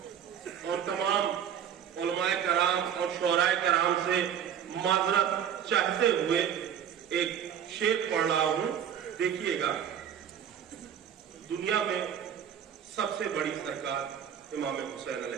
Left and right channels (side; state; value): left; quieter; 8.9 dB